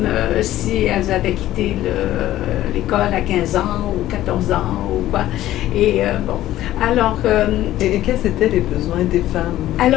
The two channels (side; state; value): right; quieter; 14.1 dB